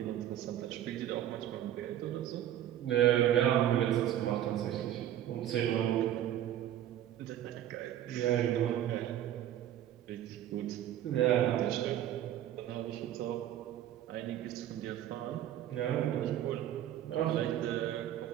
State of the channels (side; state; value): left; quieter; 11.8 dB